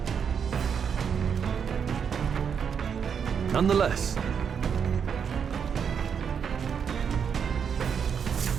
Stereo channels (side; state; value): left; quieter; 7.1 dB